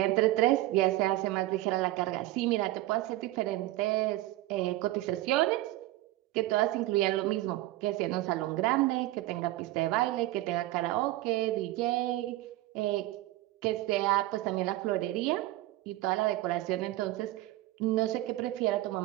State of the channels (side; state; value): left; quieter; 16.9 dB